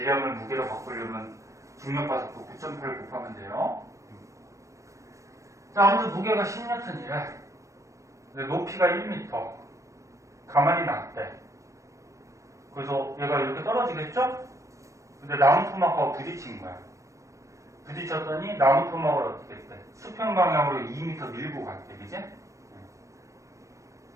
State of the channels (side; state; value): left; late; 0.15 ms